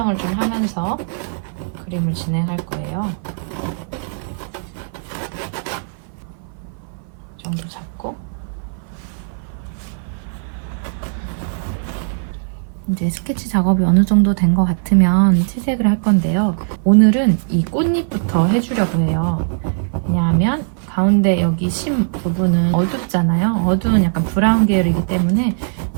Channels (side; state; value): left; silent; 57 dB below the other